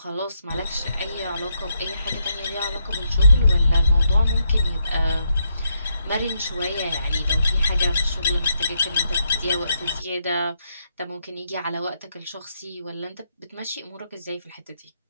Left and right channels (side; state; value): both; inverted; correlation -0.79